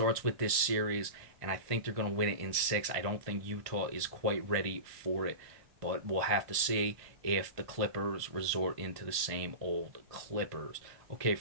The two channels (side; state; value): left; late; 1.6 ms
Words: with this series, and I think they're going to win it in 6. I don't think Utah is quite ready for it, but we'll have to see if the Clippers resort into the same old Clippers. Okay,